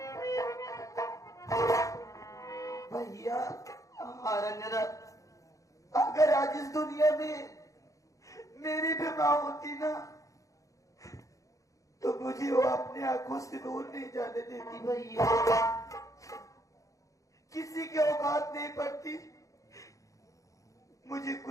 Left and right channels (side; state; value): right; late; 0.16 ms